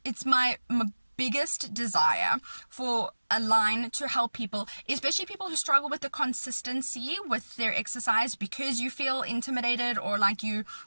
it's my biggest desire for Align to help people, especially people who struggle with the consistency with their exercise because you feel intimidated or like you're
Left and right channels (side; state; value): both; inverted; correlation -1.00